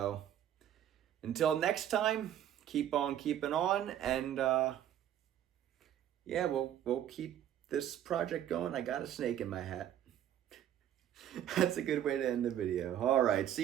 until next time, keep on keeping on, and yeah, we'll keep this project going. I got a snake in my hat. That's a good way to end the video. All right,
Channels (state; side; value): quieter; left; 11.1 dB